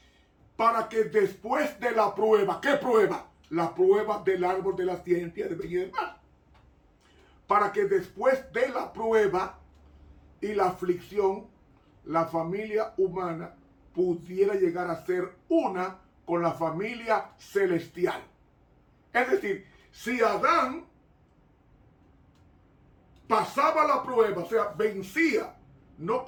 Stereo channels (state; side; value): identical; both; correlation 1.00